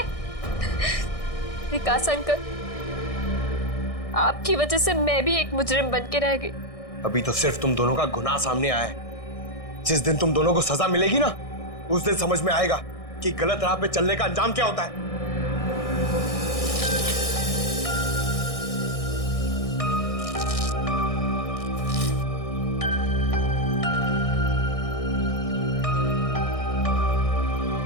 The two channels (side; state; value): right; late; 1.6 ms